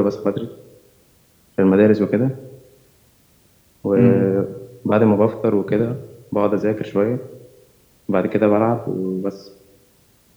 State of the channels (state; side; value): identical; both; correlation 1.00